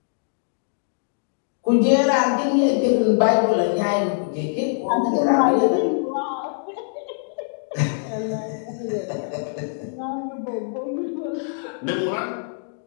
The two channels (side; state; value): right; silent; digital silence